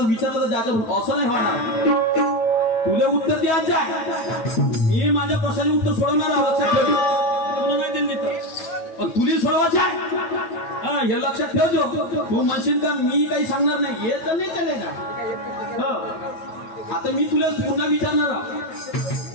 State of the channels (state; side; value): late; right; 9.0 ms